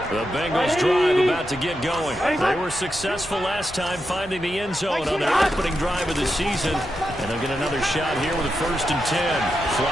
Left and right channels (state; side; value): normal; both; correlation 0.86